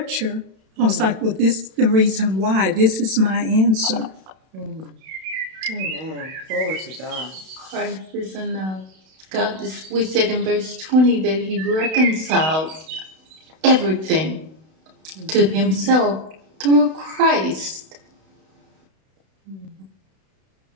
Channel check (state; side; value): late; left; 32 ms